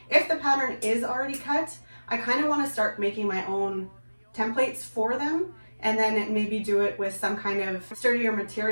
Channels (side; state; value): both; inverted; correlation -1.00